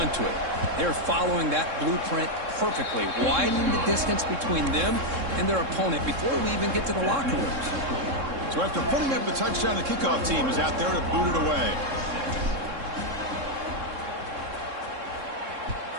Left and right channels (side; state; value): left; late; 3.7 ms